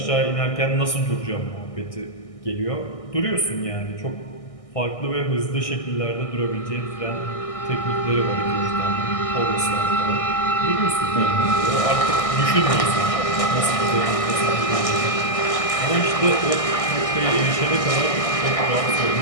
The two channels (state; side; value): late; right; 1.6 ms